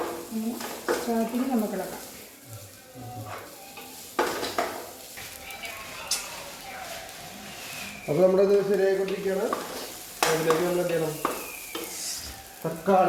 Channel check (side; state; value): both; identical; correlation 1.00